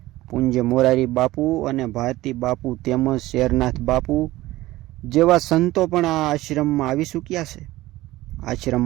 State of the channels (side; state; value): left; quieter; 17.4 dB